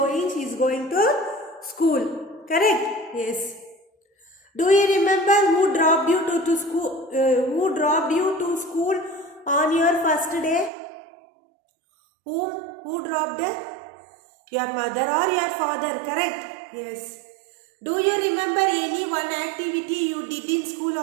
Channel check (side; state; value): left; drops out; at 10.7 s